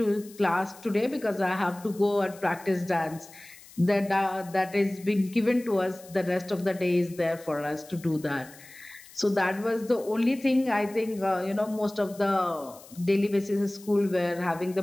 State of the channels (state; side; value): noise; left; hiss, 21 dB below the sound